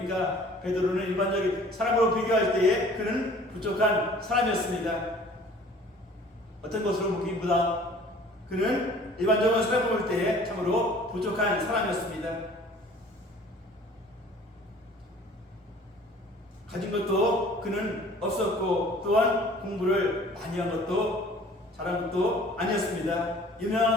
베드로는 일반적인 사람으로 비교할 때에 그는 부족한 사람이었습니다. 어떤 것으로 보기보다 그는 일반적으로 사람을 볼 때에 참으로 부족한 사람이었습니다. 가진 것도 그는 없었고, 또한 공부를 많이 한 것도 잘한 것도 아니었습니다. 유명한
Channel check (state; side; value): normal; both; correlation 0.50